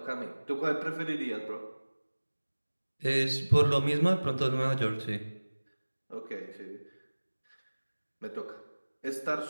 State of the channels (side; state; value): both; inverted; correlation -1.00